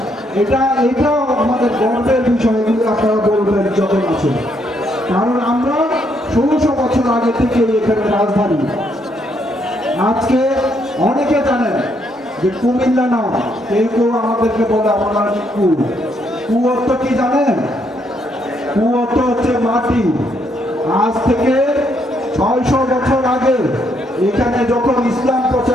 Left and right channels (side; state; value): both; normal; correlation 0.73